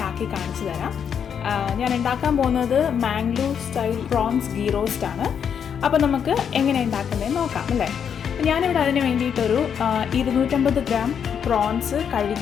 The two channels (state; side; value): quieter; right; 7.7 dB